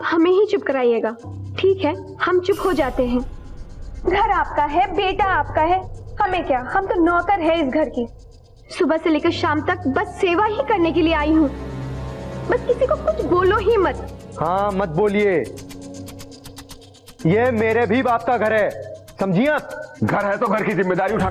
हमें ही चुप कराइएगा। ठीक है, हम चुप हो जाते हैं। घर आपका है, बेटा आपका है, हमें क्या, हम तो नौकर है इस घर की। सुबह से लेकर शाम तक बस सेवा ही करने के लिए आई हूँ। बस किसी को कुछ बोलो ही मत। हाँ, मत बोलिए। ये मेरे भी बाप का घर है, समझिए आप? घर है तो घर की जिम्मेदारी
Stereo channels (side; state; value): both; identical; correlation 1.00